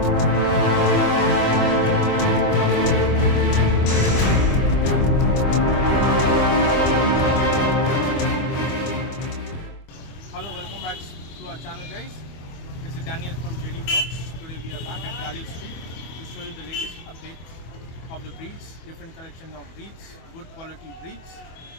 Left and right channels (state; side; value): late; right; 25 ms